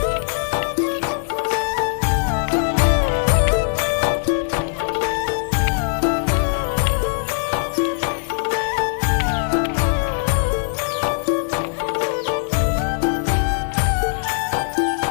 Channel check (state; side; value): silent; right; digital silence